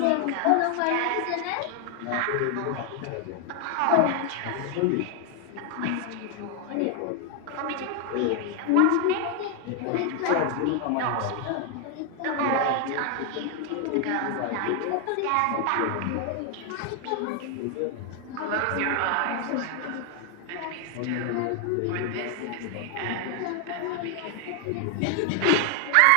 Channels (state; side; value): different; both; correlation 0.00